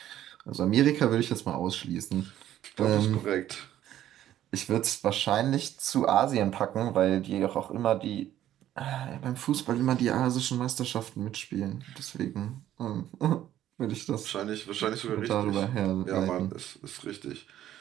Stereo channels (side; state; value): left; quieter; 12.2 dB